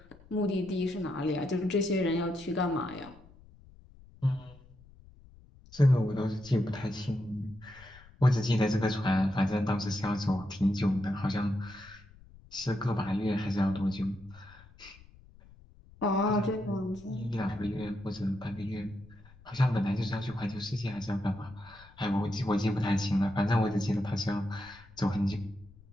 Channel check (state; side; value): noise; left; rumble, 23 dB below the sound